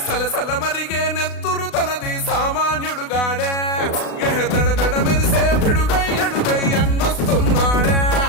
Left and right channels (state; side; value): late; right; 36 ms